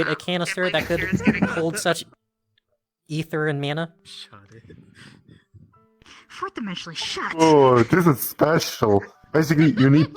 a canister that could hold such ether and mana? Shut it. Fourth dimensionally shut. Oh, this is special. Basically, you need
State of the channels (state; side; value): identical; both; correlation 1.00